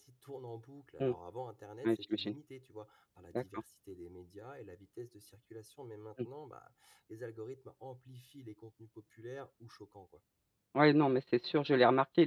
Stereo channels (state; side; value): identical; both; correlation 1.00